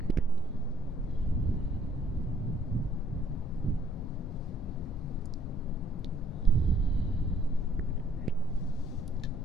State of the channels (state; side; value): normal; both; correlation 0.63